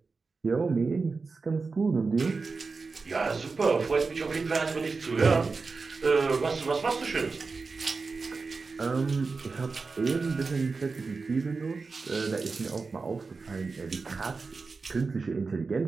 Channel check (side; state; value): left; quieter; 4.3 dB